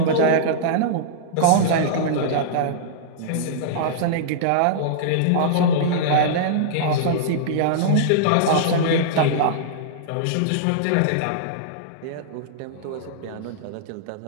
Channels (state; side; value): different; both; correlation -0.02